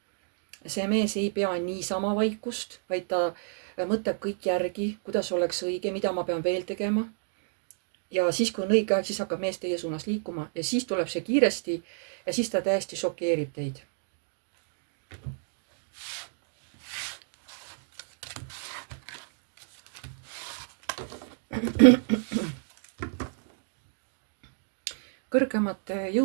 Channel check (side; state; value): left; silent; digital silence